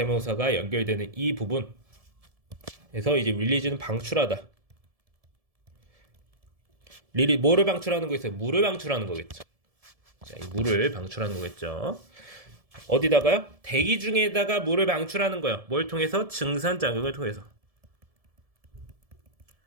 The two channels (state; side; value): late; left; 1.7 ms